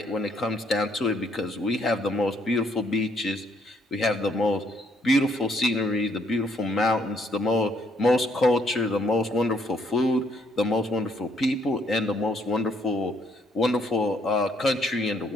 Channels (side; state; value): both; normal; correlation 0.69